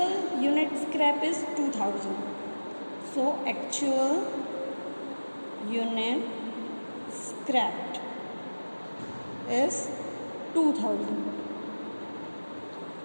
unit scrap is 2,000. So actual unit scrapped is 2,000.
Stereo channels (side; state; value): both; inverted; correlation -1.00